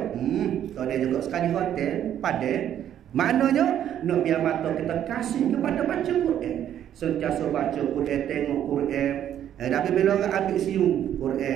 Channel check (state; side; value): quieter; left; 10.5 dB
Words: Tak ada juga. Sekali hotel, padan. Maknanya nak biar mata kita kasih kepada baca Quran. Sentiasa baca Quran, tengok Quran. Tapi bila orang ambil siung Quran